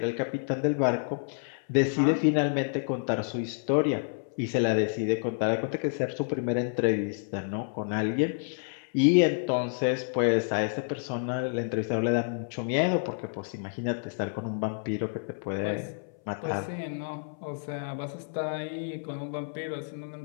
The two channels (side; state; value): right; silent; 58 dB below the other